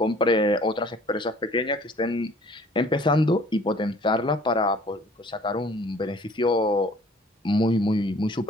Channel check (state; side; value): normal; both; correlation 0.53